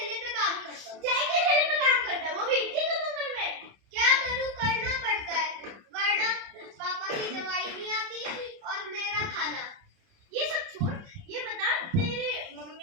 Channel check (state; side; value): late; left; 30 ms